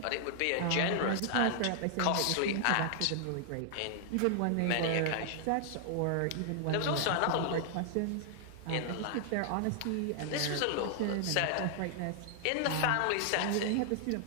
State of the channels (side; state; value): both; different; correlation -0.01